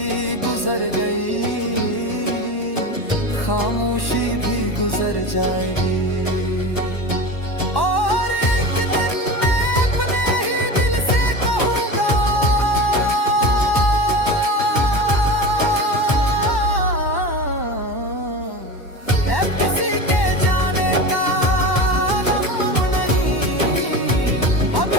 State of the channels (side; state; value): right; late; 1.1 ms